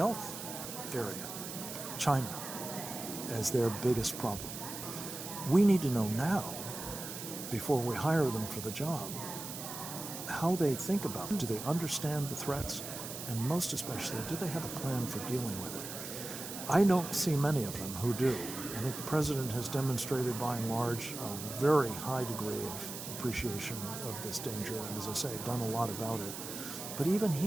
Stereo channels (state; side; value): noise; right; hiss, 8 dB below the sound